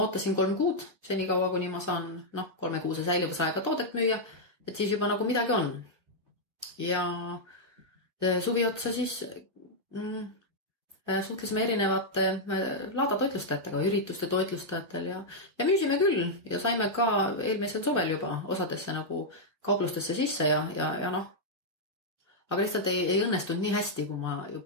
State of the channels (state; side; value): late; left; 1.8 ms